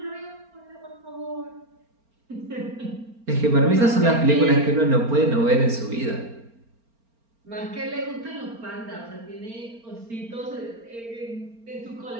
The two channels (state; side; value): late; left; 4.4 ms